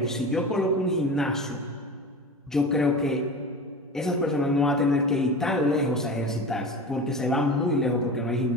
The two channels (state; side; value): normal; both; correlation 0.31